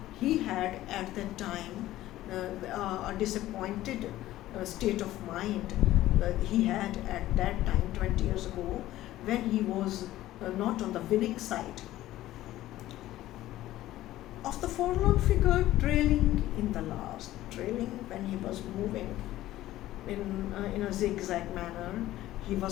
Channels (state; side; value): quieter; right; 15.1 dB